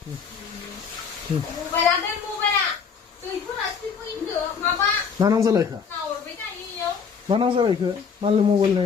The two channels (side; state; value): right; quieter; 6.2 dB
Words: Mày làm đây mua mày ạ. Tùy phút là tùy phút in được mà ba. 나랑 살라이카. Nào ở với này đi nhớ. 나랑 살라이카. 말로